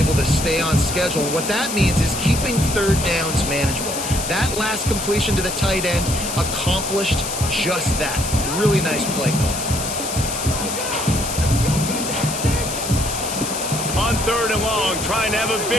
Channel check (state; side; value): noise; left; hiss, 5 dB below the sound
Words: to stay on schedule. And what that means is keeping 3rd downs manageable. That last completion to the tight end accomplished just that. Really nice play call. On 3rd and long, trying to have a